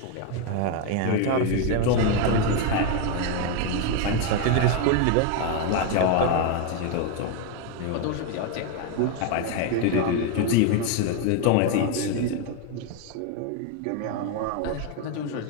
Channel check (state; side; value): different; both; correlation 0.01